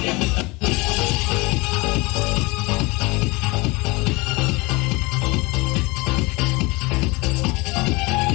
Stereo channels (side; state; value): right; quieter; 24.8 dB